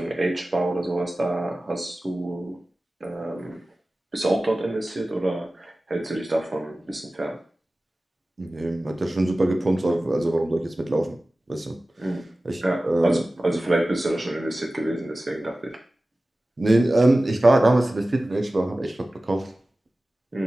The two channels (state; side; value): normal; both; correlation 0.96